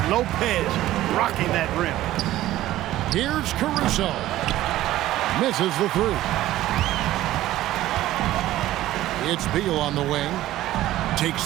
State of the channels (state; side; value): quieter; left; 14.8 dB